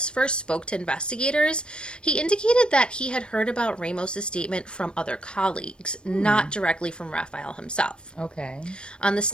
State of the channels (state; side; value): late; right; 0.054 ms